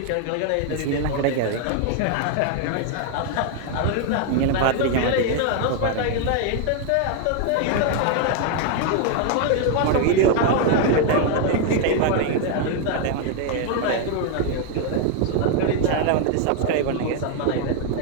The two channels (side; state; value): both; different; correlation 0.00